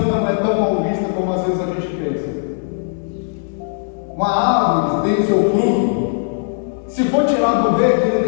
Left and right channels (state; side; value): silent; right; digital silence